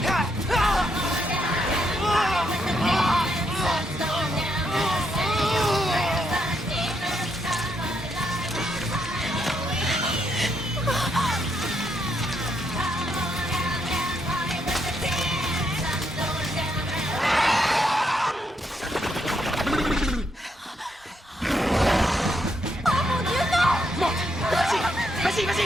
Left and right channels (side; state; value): both; normal; correlation 0.77